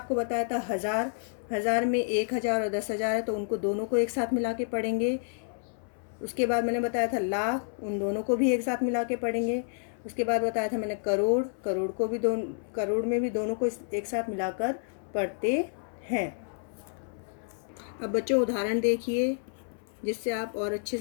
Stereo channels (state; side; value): silent; right; 58 dB below the other